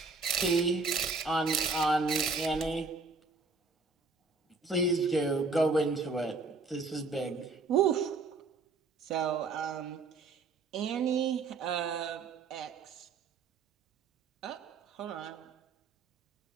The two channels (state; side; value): quieter; left; 4.1 dB